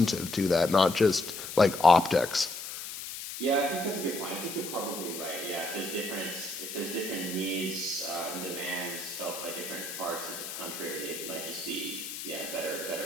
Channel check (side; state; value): left; noise; hiss, 8 dB below the sound